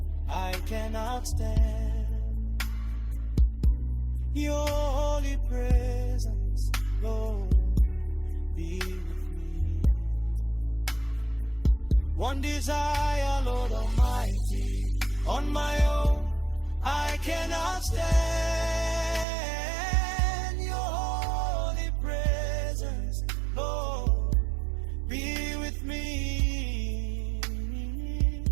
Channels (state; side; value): drops out; left; at 19.2 s